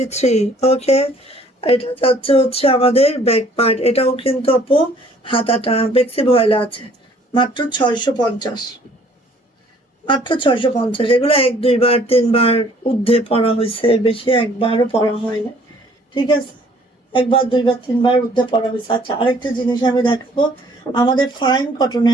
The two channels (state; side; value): normal; both; correlation 0.58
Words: ওকে, এটা যাচ্ছে হচ্ছে আমাদের ব্যাক পার্ট, এটাও কিন্তু আপু হাতাটা বেক্সি ভয়েলে আছে। মাত্র 650, মাত্র 650। এগুলো 1-2 বার 3 বার ঊর্ধ্বে পরা হয়েছে, বেশি একবারও পরা হয় না, ঠিক আছে? 1-2-3 বার ঊর্ধ্বে পরা হয়েছে। আচ্ছা, আরেকটা জিনিস আমি দেখাবো, আমাদের ফাইন